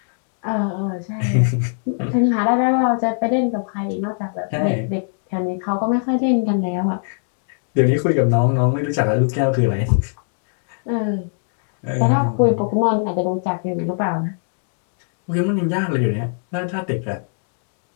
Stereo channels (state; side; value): silent; right; digital silence